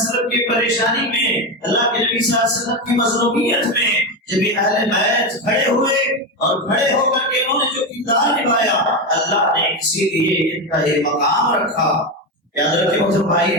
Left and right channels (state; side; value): normal; both; correlation 0.14